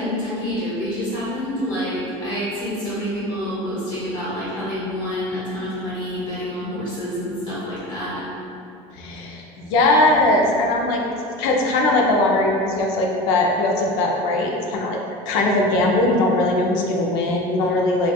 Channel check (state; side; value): normal; both; correlation 0.31